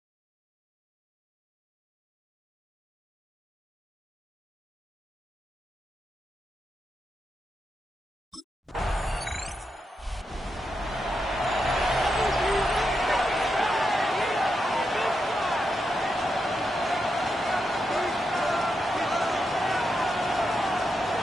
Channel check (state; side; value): normal; both; correlation 0.85